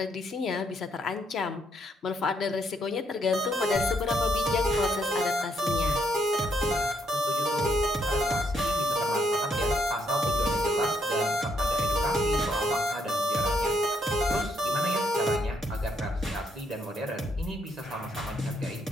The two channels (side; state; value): both; normal; correlation 0.74